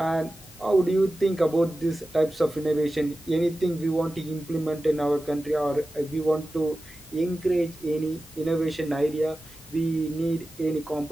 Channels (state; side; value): normal; both; correlation 0.94